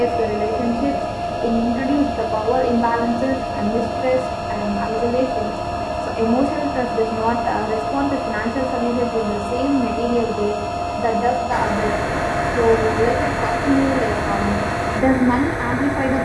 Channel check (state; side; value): identical; both; correlation 1.00